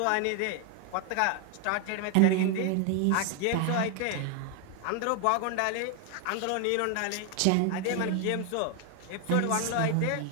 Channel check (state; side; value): different; both; correlation 0.01